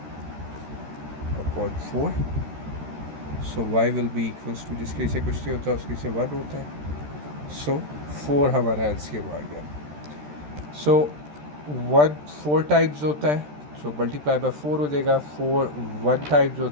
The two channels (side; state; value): left; late; 13 ms